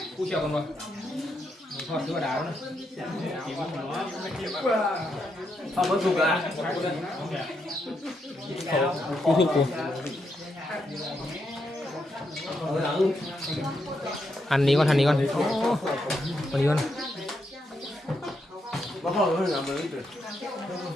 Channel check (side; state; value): both; normal; correlation 0.81